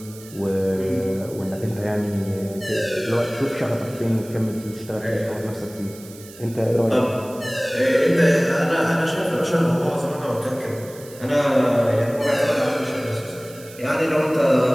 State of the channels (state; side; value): noise; right; hiss, 19 dB below the sound